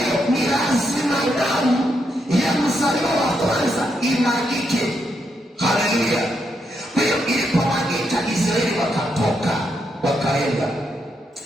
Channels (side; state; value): both; normal; correlation 0.80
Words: ni lazima damu ya mzaliwa wa kwanza imwagike. Haleluya! Kwa hiyo ilipomwagika, Israeli wakatoka wakaenda.